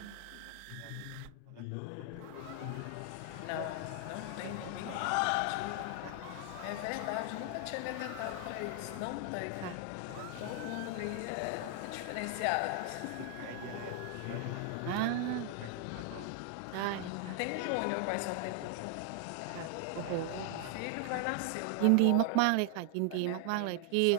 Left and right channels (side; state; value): both; different; correlation 0.00